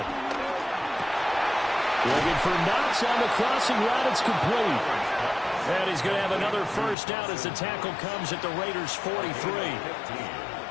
Looking for Knox on the crossing route. It's complete. And he's going to have another 1st down as the tackle comes at the Raiders' 43.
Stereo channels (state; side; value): drops out; right; at 7.0 s